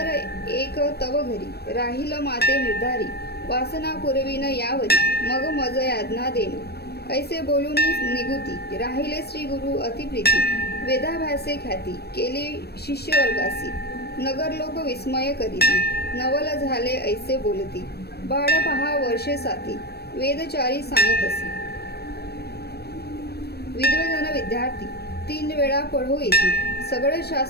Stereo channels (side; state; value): right; late; 0.47 ms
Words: एक तव घरी, राहील माते निर्धारी, वासना पुरविन यावरी, मग मज याज्ञा देणे, ऐसे बोलून निगुती, राहिले श्री गुरु अतिप्रीती, वेदाभ्यासे ख्याती, केली शिष्य वर्गासी, नगरलोक विस्मय करीती, नवल झाले ऐसे बोलती, बाळ पहा वर्षे साती, वेदचारी सांगतसी। विद्वजन विद्यार्थी, 3 वेळा पढो येती, सगळे